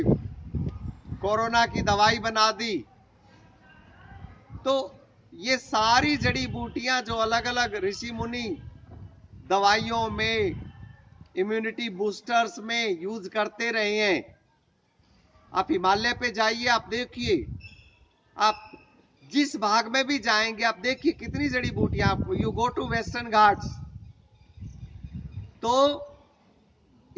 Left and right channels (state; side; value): identical; both; correlation 1.00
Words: कोरोना की दवाई बना दी। तो ये सारी जड़ी बूटियां जो अलग अलग ऋषि मुनि दवाइयों में, इम्यूनिटी बूस्टर्स में यूज करते रहे हैं। आप हिमालय पे जाइए, आप देखिए, आप जिस भाग में भी जाएंगे आप देखिए कितनी जड़ी बूटियां आपको। You go to western Ghats, तो